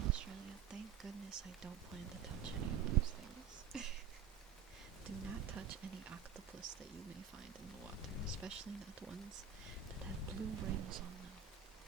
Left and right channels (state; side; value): quieter; left; 7.9 dB